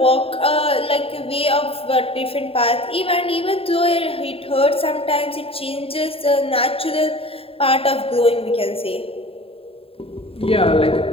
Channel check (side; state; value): right; late; 0.27 ms